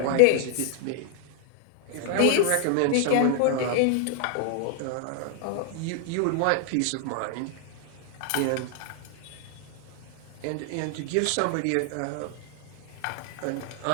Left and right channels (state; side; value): different; both; correlation 0.00